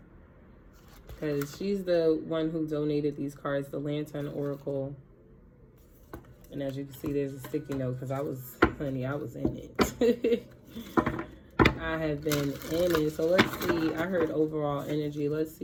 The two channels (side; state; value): both; identical; correlation 1.00